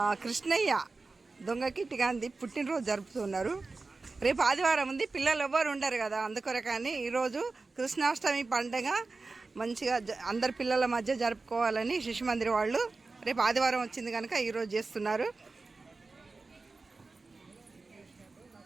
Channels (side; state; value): left; quieter; 3.8 dB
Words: కృష్ణయ్య దొంగకిట్టి గాంధీ పుట్టినరోజు జరుపుతున్నారు. రేపు ఆదివారం ఉంది, పిల్లలు ఎవ్వరు ఉండరు కదా, అందుకొరకని ఈరోజు కృష్ణాష్టమి పండుగ మంచిగా అందరి పిల్లల మధ్య జరుపుకోవాలని శిశు మందిర్ వాళ్ళు రేపు ఆదివారం వచ్చింది కనుక ఈరోజు చేస్తున్నారు.